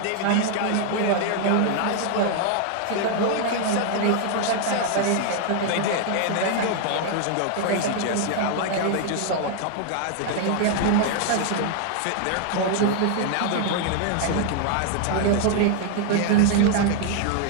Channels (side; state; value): both; different; correlation 0.00